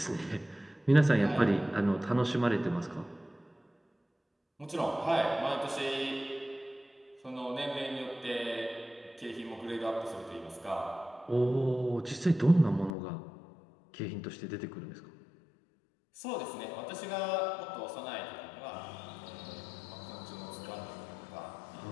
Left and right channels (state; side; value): drops out; right; at 12.9 s